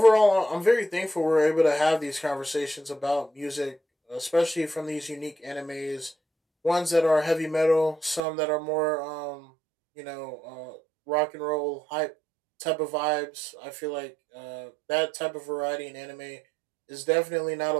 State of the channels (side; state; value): left; drops out; at 8.2 s